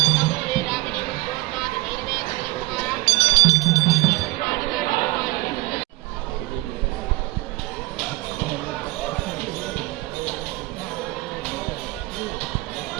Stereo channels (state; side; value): quieter; left; 20.8 dB